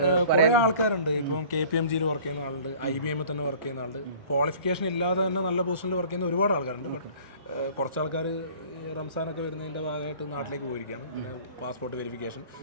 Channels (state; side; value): inverted; both; correlation -0.48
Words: കുറേ ആൾക്കാരുണ്ട്. ഇപ്പം KPMG വർക്ക് ചെയ്യുന്ന ആളുണ്ട്, IBM തന്നെ വർക്ക് ചെയ്യുന്ന ആളുണ്ട്. ക്വാളിഫിക്കേഷൻ ഇല്ലാതെ തന്നെ നല്ല പൊസിഷനിൽ വർക്ക് ചെയ്യുന്ന ഒരുപാട് ആൾക്കാരുണ്ട്. ബട്ട് കുറച്ച് ആൾക്കാർ റംസാനൊക്കെ വരുന്നതിൻ്റെ ഭാഗമായിട്ട് നാട്ടിലേക്ക് പോയിരിക്കുകയാണ്. പിന്നെ പാസ്പോർട്ട് വെരിഫിക്കേഷൻ,